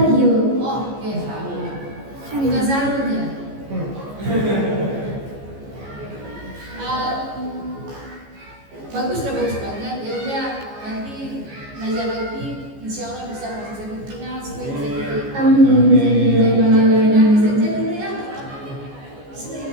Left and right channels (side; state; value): left; late; 14 ms